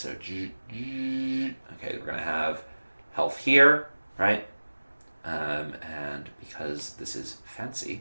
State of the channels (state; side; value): inverted; both; correlation -1.00